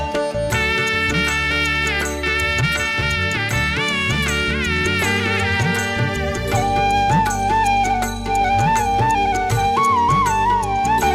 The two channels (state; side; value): identical; both; correlation 1.00